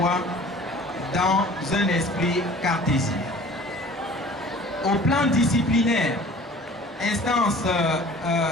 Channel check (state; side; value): normal; both; correlation 0.46